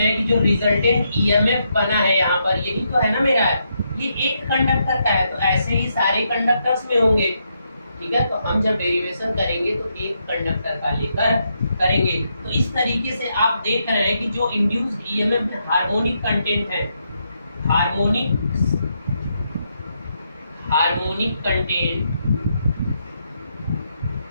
हैं कि जो रिजल्टेंट ईएमएफ बना है यहाँ पर, यही तो है ना मेरा, ये एक कंडक्टर का है, तो ऐसे ही सारे कंडक्टर्स में होंगे। ठीक है, तो हम जब डेरिवेशन करेंगे तो एक कंडक्टर का लेकर करेंगे। तो इस तरीके से आप देख रहे हैं कि जो इंड्यूस्ड ईएमएफ में हार्मोनिक कंटेंट है, हार्मोनिक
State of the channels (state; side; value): inverted; both; correlation -0.80